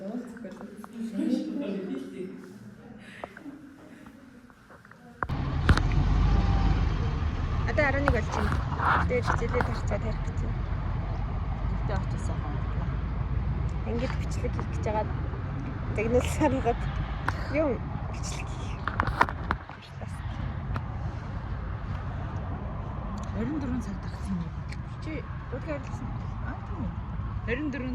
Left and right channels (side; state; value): both; identical; correlation 1.00